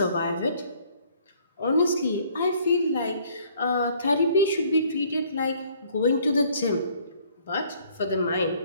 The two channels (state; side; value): inverted; both; correlation -0.60